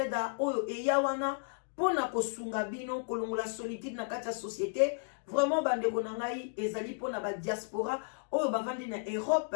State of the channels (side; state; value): right; silent; digital silence